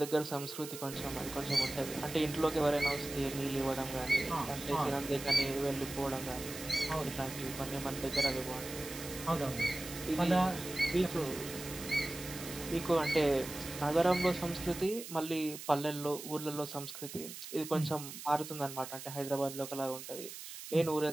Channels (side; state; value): right; noise; hiss, 11 dB below the sound